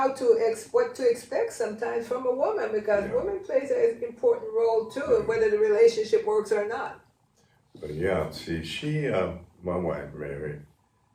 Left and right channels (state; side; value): identical; both; correlation 1.00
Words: to what to expect sometimes from a woman, because woman plays an important role too, whether the relationship works or not. But see, she, my wife, Mary,